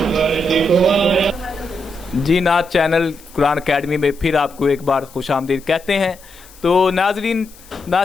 پر، دیکھو آیا۔ جی نعت چینل قرآن اکیڈمی میں پھر آپ کو ایک بار خوش آمدید کہتے ہیں۔ تو ناظرین،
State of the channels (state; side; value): noise; left; hiss, 23 dB below the sound